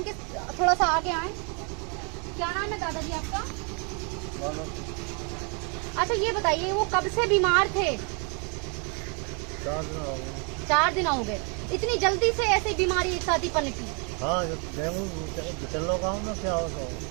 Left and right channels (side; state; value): left; quieter; 36.2 dB